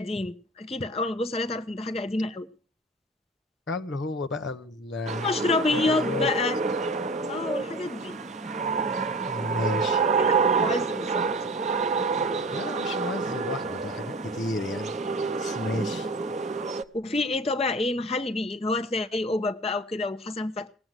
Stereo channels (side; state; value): both; normal; correlation 0.38